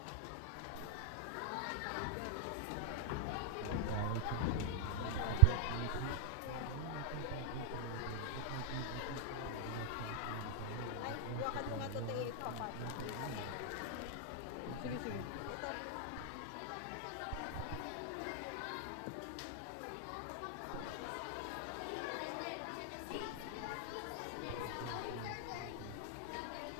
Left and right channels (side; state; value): both; different; correlation 0.00